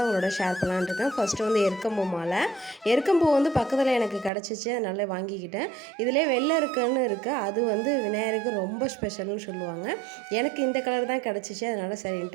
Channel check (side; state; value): left; drops out; at 4.3 s